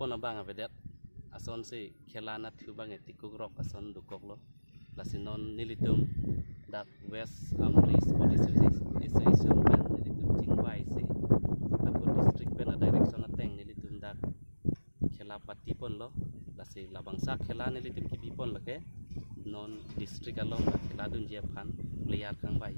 abang avedet ason se khelana thu bang etikuk rok ason dukok lo lasinon nilitum dak West Amri Sports Association pen nilitum chingwai se akut district pen a direction ateng nilitum dak khela pati pon lo lasi labangsa khela nilitum kibi pon lake non district along khela dun je phan player khang bai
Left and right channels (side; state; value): both; inverted; correlation -1.00